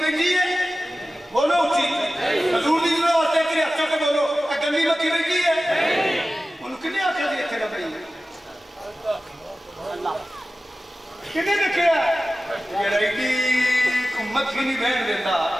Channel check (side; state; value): both; normal; correlation 0.96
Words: ہے بولو اچھی حضور دی جنہوں آتے ہیں تیرے اچھا کے بولو گندی مکھی بیٹھی ہے انہوں کنے آتے ہیں اتنے رب رہی ہے کنے دیکھے ہے یہ رائٹی کو مکھی نہیں بہن دیتا